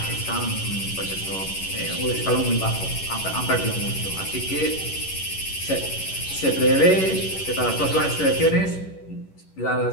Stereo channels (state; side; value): late; right; 11 ms